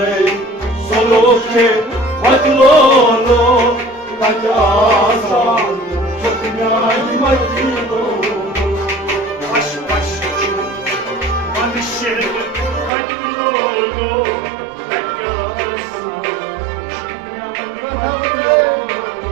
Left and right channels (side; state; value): left; drops out; at 12.9 s